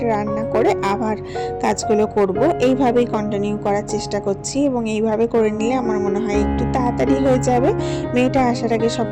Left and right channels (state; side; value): identical; both; correlation 1.00